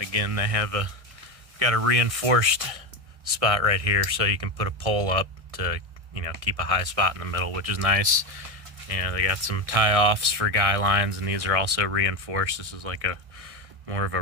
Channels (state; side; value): late; left; 1.6 ms